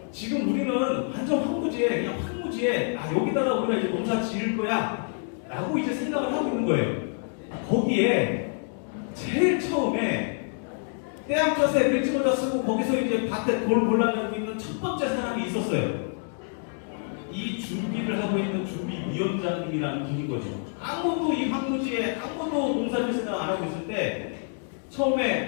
지금 우리는 완전 황무지에 여기다가 우리가 이제 농사 지을 거야 라고 이제 생각을 하고 있는 거예요. 거기에 제일 처음에 떼양볕에 밀짚모자 쓰고 거기서 이제 밭에 돌 골라내고 있는 첫 번째 사람이 있었어요. 이 준비를 하고 있는 준비위원장님이라는 분인 거죠. 아무도 이 황무지에 농사질 생각 안 하고 있을 때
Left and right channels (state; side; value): silent; right; 57 dB below the other